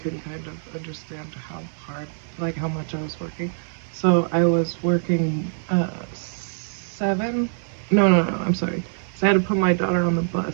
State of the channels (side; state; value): left; silent; 63 dB below the other